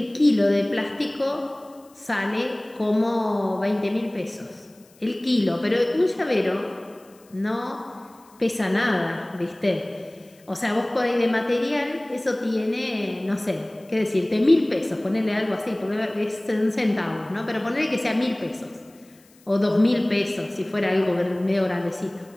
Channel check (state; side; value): noise; left; hiss, 29 dB below the sound